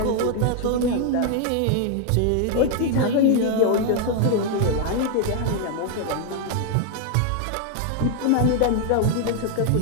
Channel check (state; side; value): different; both; correlation 0.00